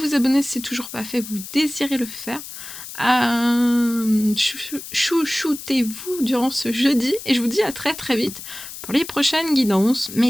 abonner si c'est toujours pas fait, vous désirez le faire. Chouchoutez-vous durant ce jeudi et je vous dis à très très vite pour les prochaines guidances,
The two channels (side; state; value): left; noise; hiss, 12 dB below the sound